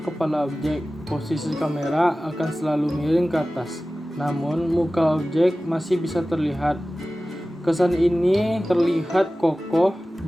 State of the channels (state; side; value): normal; both; correlation 0.96